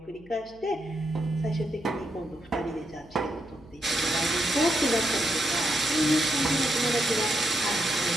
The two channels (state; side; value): noise; left; hum, 25 dB below the sound